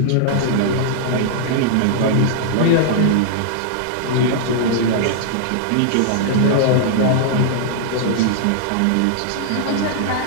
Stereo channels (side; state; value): both; different; correlation -0.01